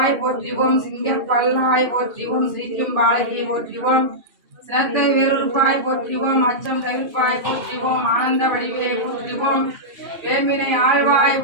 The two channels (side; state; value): left; late; 2.7 ms